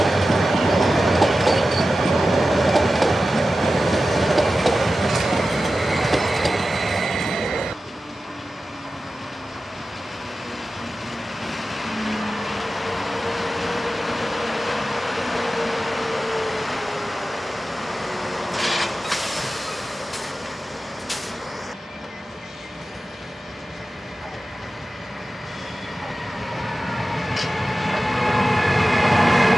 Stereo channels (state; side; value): normal; both; correlation 0.94